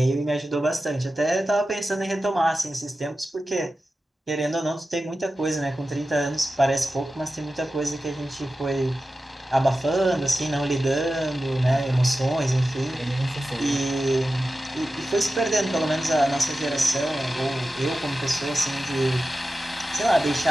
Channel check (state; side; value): normal; both; correlation 0.94